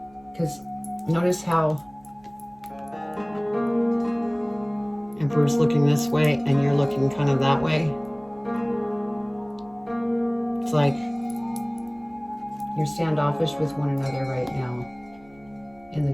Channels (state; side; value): noise; right; hum, 28 dB below the sound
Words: Because notice how Emperor's looking this way and you're looking kind of that way. It's like you're standoffish with one another right now. And